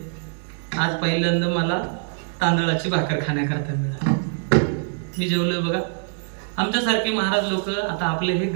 आज पहिल्यांदा मला तांदळाची भाकर खाण्याकरता मिळाली. मी जेवलोय. बघा, आमच्यासारखे महाराज लोक, आता आपले हे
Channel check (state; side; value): silent; left; digital silence